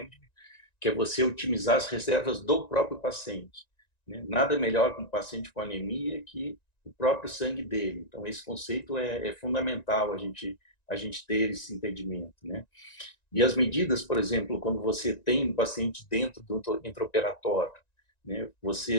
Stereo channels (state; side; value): late; right; 1.9 ms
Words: que é você otimizar as reservas do próprio paciente, né? Nada melhor para um paciente com anemia que o próprio sangue dele. Então, esse conceito é fundamental a gente ter esse entendimento, né? E as medidas, por exemplo, quando você tem um paciente dentro do intraoperatório, né,